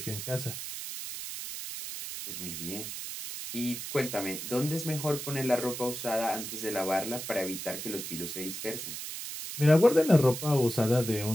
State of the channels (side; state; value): right; noise; hiss, 7 dB below the sound